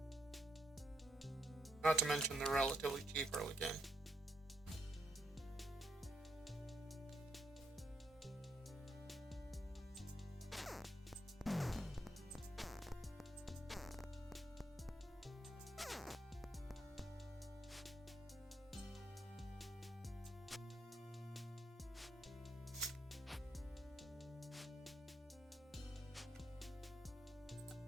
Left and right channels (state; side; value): normal; both; correlation 0.75